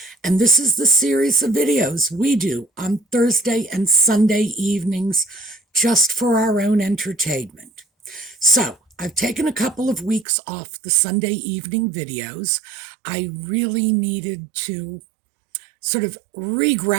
And this is the series of videos we do on Thursday and Sunday evenings just for our own entertainment. So I've taken a couple of weeks off the Sunday evening videos. I really needed to sort of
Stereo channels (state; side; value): drops out; left; at 10.2 s